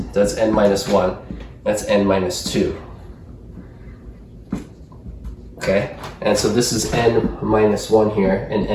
That's n minus 1. That's n minus 2. Okay, and so this is n minus 1 here, and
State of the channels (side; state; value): both; identical; correlation 1.00